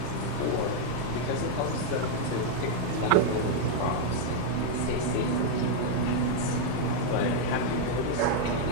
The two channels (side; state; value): both; different; correlation -0.01